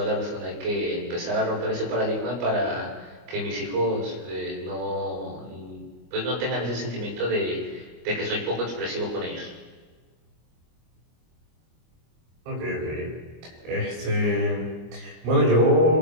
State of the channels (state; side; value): late; left; 25 ms